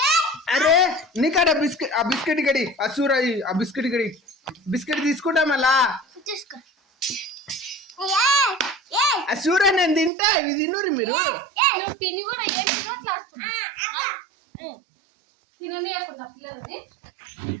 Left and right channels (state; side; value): drops out; left; at 10.1 s